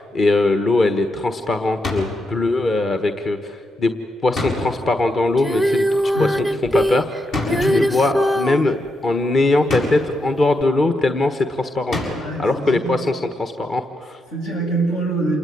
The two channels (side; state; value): both; normal; correlation 0.83